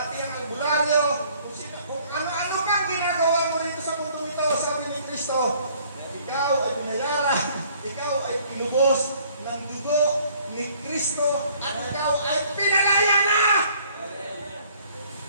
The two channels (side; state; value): both; inverted; correlation -0.59